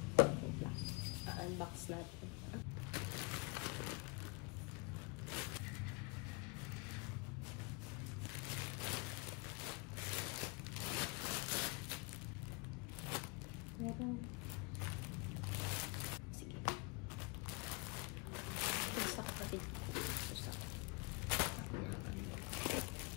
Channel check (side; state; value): right; quieter; 29.1 dB